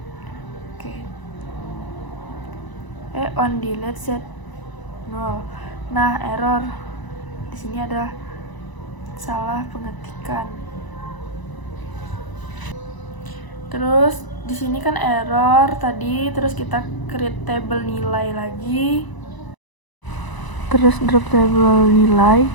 On delete set 0. Nah, error. Di sini ada salah pengetikan. Terus di sini kan error tadi, terus kita create table nilai lagi. Terus drop table nilai.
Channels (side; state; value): right; late; 1.0 ms